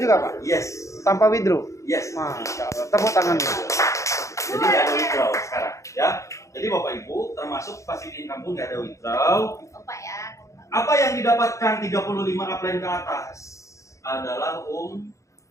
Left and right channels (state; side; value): late; right; 0.15 ms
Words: juga Pak? Yes. Tanpa withdraw? Yes. Masya Allah. Tepuk tangan. Jadi nggak ada withdraw sekarang, ya. Jadi Bapak Ibu termasuk passive income pun nggak ada withdraw. Opa ya. Apa yang didapatkan 35 upline ke atas adalah Umroh.